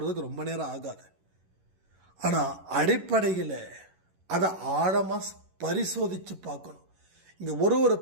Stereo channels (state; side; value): late; left; 11 ms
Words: ரொம்ப நேரம் ஆகாது. ஆனால் அடிப்படையில் அதை ஆழமாக பரிசோதித்து பார்க்கணும். இங்கே ஒரு